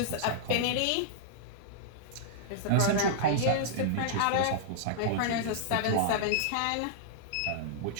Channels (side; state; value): both; different; correlation -0.02